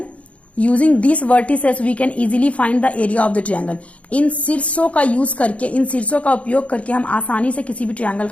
using these vertices we can easily find the area of the triangle. इन शीर्षों का use करके, इन शीर्षों का उपयोग करके हम आसानी से किसी भी ट्रायंगल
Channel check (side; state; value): right; late; 0.064 ms